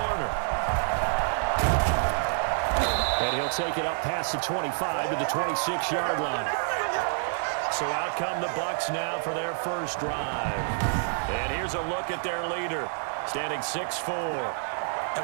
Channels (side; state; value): left; silent; digital silence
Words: And he'll take it up past the 25 to the 26-yard line. So out come the Bucs now for their first drive. And here's a look at their leader, standing 6'4".